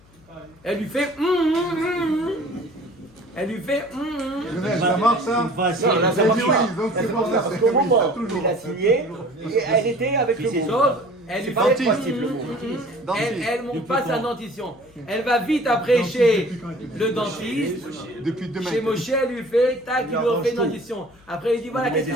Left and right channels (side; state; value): left; noise; hum, 28 dB below the sound